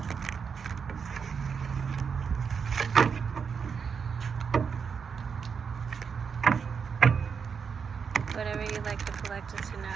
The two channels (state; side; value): quieter; left; 6.2 dB